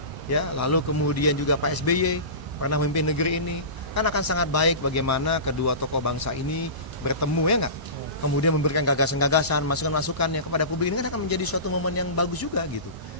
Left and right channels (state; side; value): late; left; 1.0 ms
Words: ya. Lalu kemudian juga Pak SBY pernah memimpin negeri ini. Kan akan sangat baik bagaimana kedua tokoh bangsa ini bertemu, ya enggak? Kemudian memberikan gagasan-gagasan, masukan-masukannya kepada publik. Ini kan akan menjadi suatu momen yang bagus juga gitu.